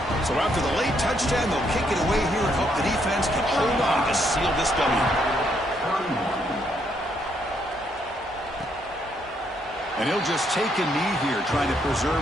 So after the late touchdown, they'll kick it away here and hope the defense can hold on to seal this W. And he'll just take a knee here, trying to preserve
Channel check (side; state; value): both; normal; correlation 0.73